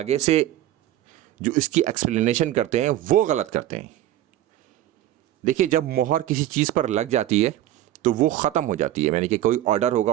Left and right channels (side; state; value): left; quieter; 13.4 dB